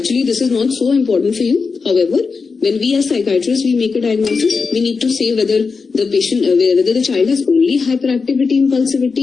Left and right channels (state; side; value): quieter; right; 4.8 dB